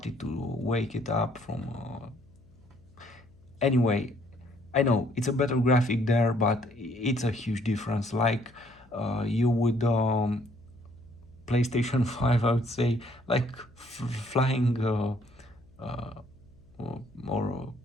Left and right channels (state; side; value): noise; left; hum, 28 dB below the sound